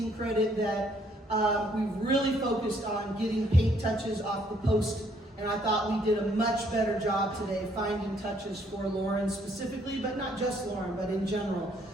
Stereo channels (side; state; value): both; normal; correlation 0.67